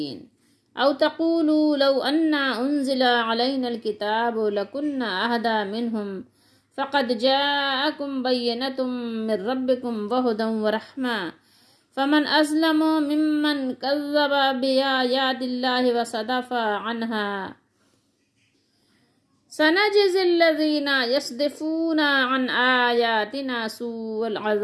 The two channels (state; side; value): identical; both; correlation 1.00